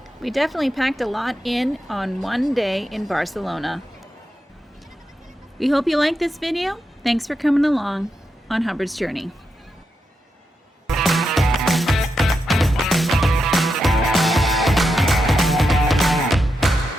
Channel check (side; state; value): both; normal; correlation 0.86